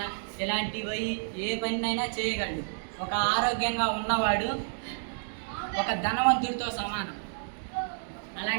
ఇలాంటివి ఏ పనినైనా చేయగలడు. ఒక ఆరోగ్యంగా ఉన్నవాడు ఒక ధనవంతుడితో సమానం.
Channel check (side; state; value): left; silent; digital silence